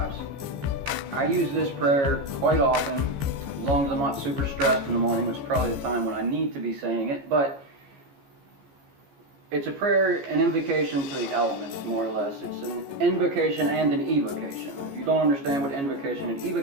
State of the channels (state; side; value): late; left; 14 ms